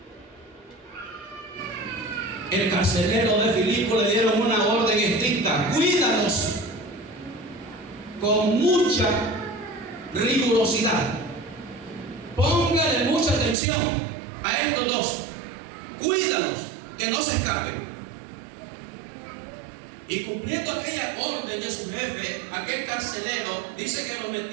El carcelero de Filipo le dieron una orden estricta: cuídalos con mucha rigurosidad. Póngale mucha atención a estos dos. Cuídalos, que no se escapen. Y cumpliendo aquella orden de su jefe, aquel carcelero dice que lo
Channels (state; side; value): drops out; left; at 13.6 s